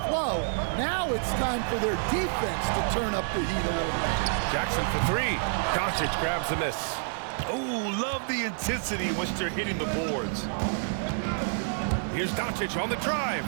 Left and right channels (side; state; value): left; silent; digital silence